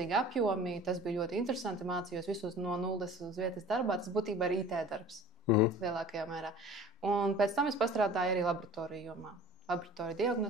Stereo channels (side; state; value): both; normal; correlation 0.44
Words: apjomi, tas bija ļoti interesanti, mācījos visus no nulles uz vietas darbā, tas būtībā ir IT darbs lielākajā mērā. Un pēc tam es pastrādāju arī laboratoriju jomā. Laboratorija